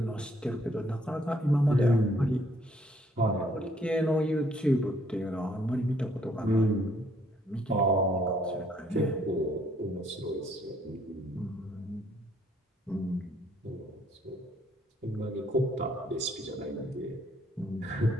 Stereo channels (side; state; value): both; normal; correlation 0.66